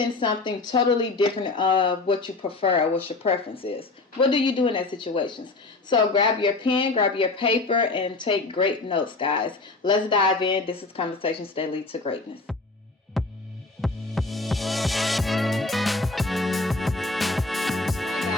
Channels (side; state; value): right; quieter; 3.4 dB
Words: something totally different of what you prefer or what your preference is? What do you do in that situations? So grab your pen, grab your paper, and take great notes, guys. Let's dive in. This is Conversations That Lead to Greatness.